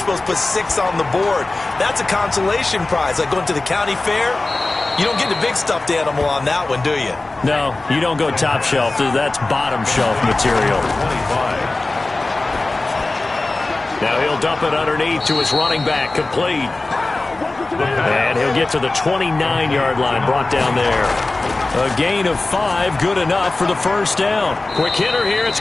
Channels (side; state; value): right; quieter; 3.1 dB